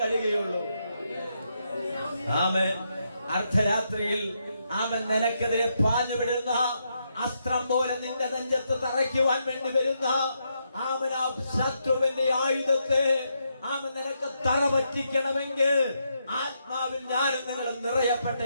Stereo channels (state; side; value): inverted; both; correlation -0.80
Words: കഴിയുകയുള്ളൂ. അർദ്ധരാത്രിയിൽ നിനക്കെതിരെ പാഞ്ഞു വിടുന്ന അസ്ത്രം പോലെ നിന്റെ നെഞ്ചത്ത് തറയ്ക്കുവാൻ വേണ്ടി വരുന്ന ശത്രുവിന്റെ ആയുധത്തെ നിനക്ക് തറ പറ്റിക്കണമെങ്കിൽ ആത്മാവിൽ ഞാനും നിങ്ങൾ നിറയപ്പെട്ടേ